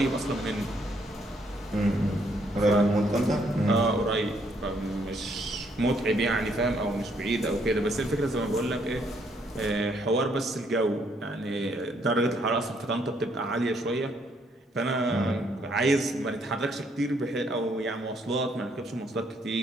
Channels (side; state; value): both; normal; correlation 0.70